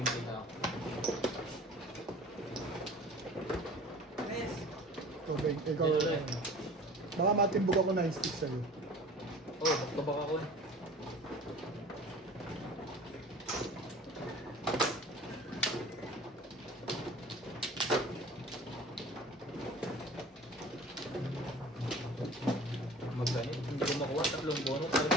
kita ako. Yes. Tubig, ikaw. Ito rin. Baka matimbog ako 9 stick sa'yo. Oh, magkabak ako eh. Magganit, hindi ko makuha. Tatlong bonus,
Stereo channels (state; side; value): normal; both; correlation 0.43